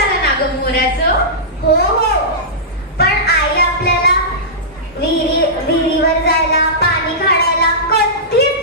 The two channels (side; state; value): both; normal; correlation -0.16